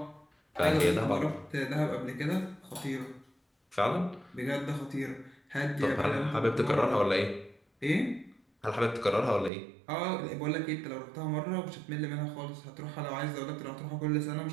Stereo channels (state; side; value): drops out; left; at 9.5 s